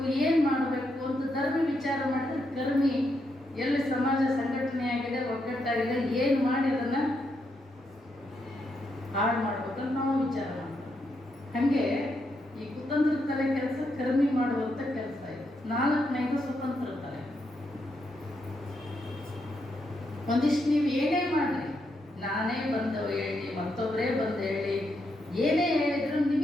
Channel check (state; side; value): normal; both; correlation 0.80